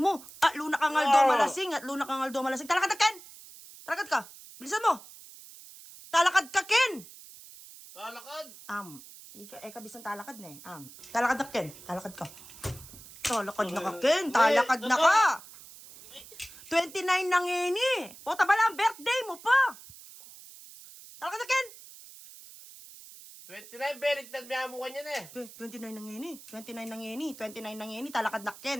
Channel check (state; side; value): noise; right; hiss, 18 dB below the sound